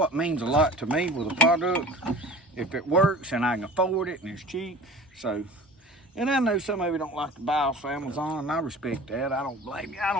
means a lot to me with a product. If it works and I can afford it and it's cheap. So, and I know some of you don't like to buy off Amazon, and I respect that. I don't blame you. I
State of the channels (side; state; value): both; normal; correlation 0.41